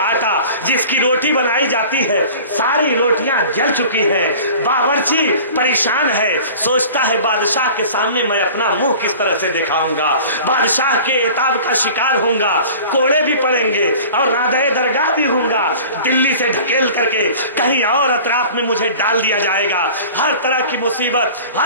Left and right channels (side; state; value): both; inverted; correlation -0.42